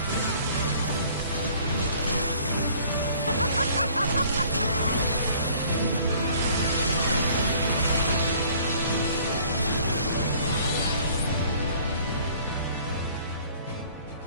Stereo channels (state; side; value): inverted; both; correlation -0.54